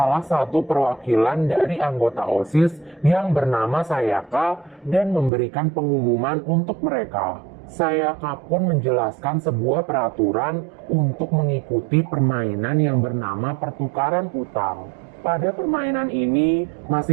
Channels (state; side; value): drops out; left; at 5.3 s